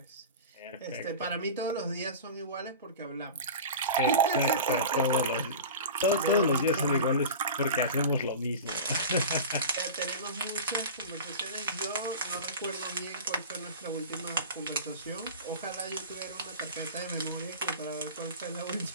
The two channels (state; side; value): inverted; both; correlation -0.32